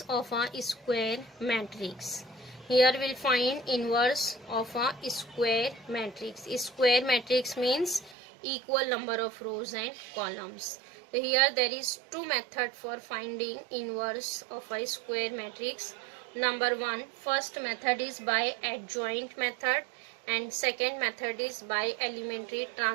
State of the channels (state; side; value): drops out; left; at 8.2 s